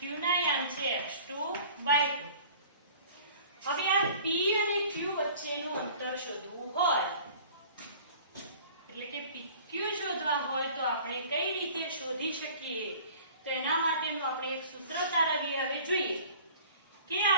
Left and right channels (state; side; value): inverted; both; correlation -0.46